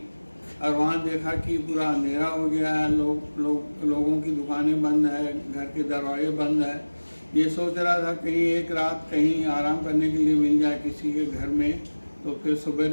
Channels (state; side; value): inverted; both; correlation -1.00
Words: और वहाँ देखा कि पूरा अंधेरा हो गया है। लोगों की दुकानें बंद है, घर के दरवाजे बंद है। ये सोच रहा था कहीं एक रात कहीं आराम करने के लिए मिल जाए किसी के घर में, तो फिर